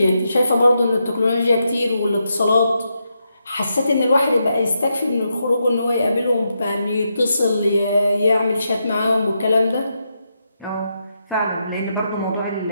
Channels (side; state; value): both; inverted; correlation -0.83